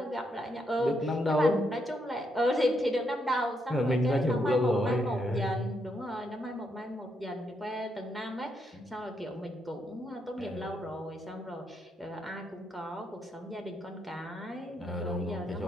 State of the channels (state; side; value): normal; both; correlation 0.79